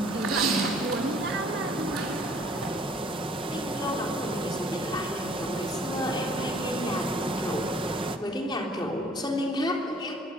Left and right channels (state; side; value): normal; both; correlation 0.56